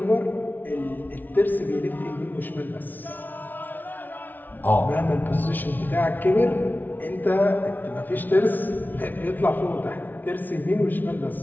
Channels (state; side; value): late; right; 0.085 ms